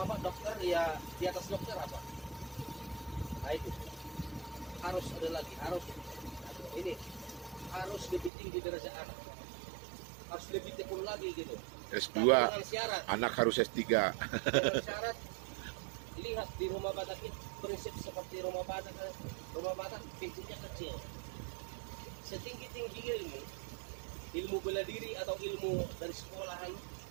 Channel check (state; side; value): drops out; left; at 8.3 s